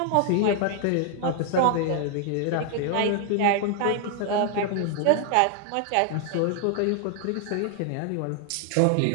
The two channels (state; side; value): different; both; correlation 0.00